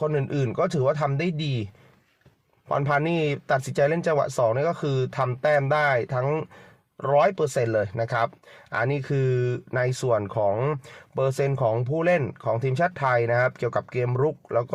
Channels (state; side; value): identical; both; correlation 1.00